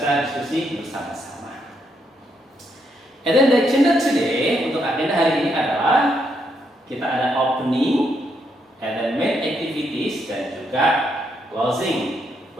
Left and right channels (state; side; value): normal; both; correlation 0.77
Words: diskusi bersama-sama. And then the agenda today, untuk agenda hari ini adalah kita ada opening, and then main activities, dan juga closing.